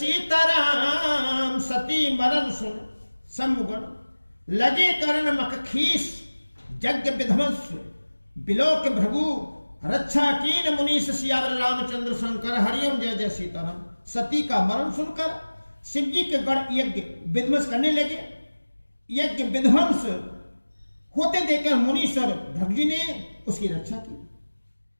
सती मरण सुन सम्मुगन, लगे करण मख खीस। यज्ञ विध्वंस बिलोक भृगु, रक्षा कीन मुनीष सियावर रामचंद्र शंकर हरिओम। जय जय सीताराम। सती का मरण सुनकर शिव जी के गढ़ यज्ञ विध्वंस करने लगे। यज्ञ विध्वंस होते देखकर मुनीश्वर भृगु जी ने उसकी रक्षा की।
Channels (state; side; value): inverted; both; correlation -1.00